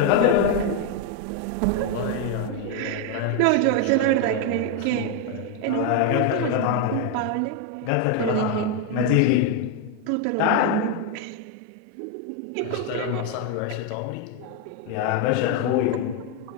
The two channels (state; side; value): different; both; correlation 0.01